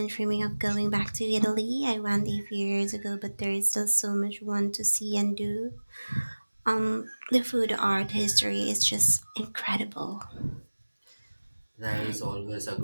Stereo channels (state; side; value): inverted; both; correlation -1.00